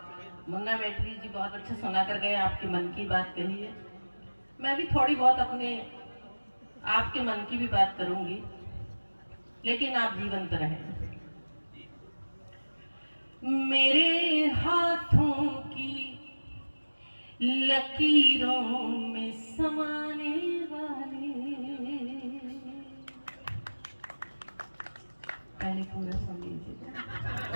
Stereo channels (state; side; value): inverted; both; correlation -1.00